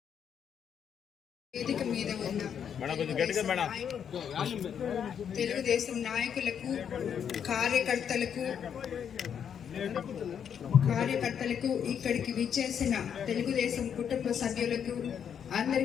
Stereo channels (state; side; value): quieter; right; 8.1 dB